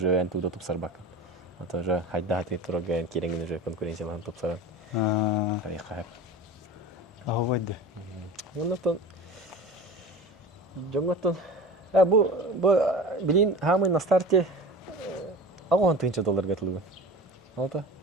антуда тупсарбак ата уже хайда хати турага кирен уже конкуренциялар тупсаран тариха Авайды. оннотон жоңотон бу билин хамы на старте $1000 гатылган. Алта.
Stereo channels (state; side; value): normal; both; correlation 0.34